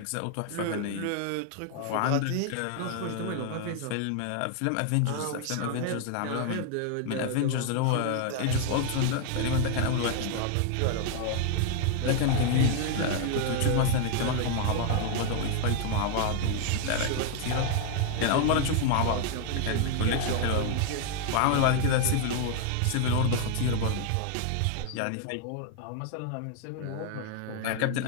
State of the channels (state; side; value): different; both; correlation 0.00